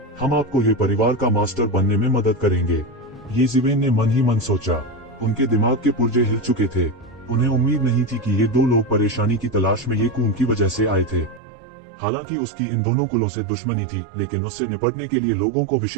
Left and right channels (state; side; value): drops out; left; at 11.4 s